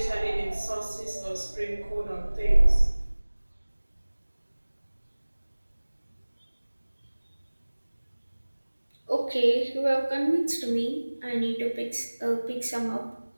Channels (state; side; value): inverted; both; correlation -1.00